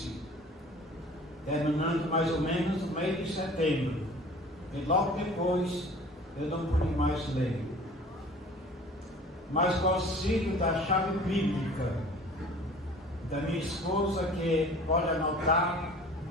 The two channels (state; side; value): normal; both; correlation 0.46